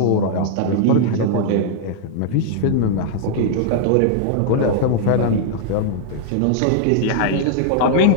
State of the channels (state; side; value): different; both; correlation -0.01